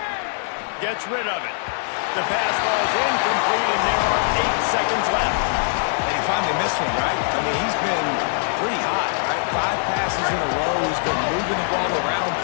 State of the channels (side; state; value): right; silent; 56 dB below the other